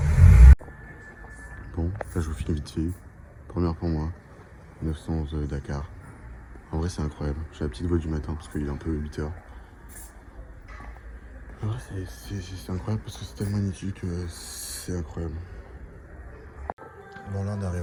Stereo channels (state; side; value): identical; both; correlation 1.00